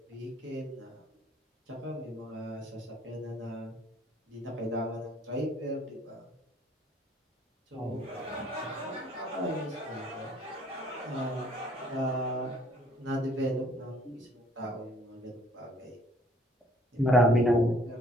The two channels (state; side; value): normal; both; correlation 0.59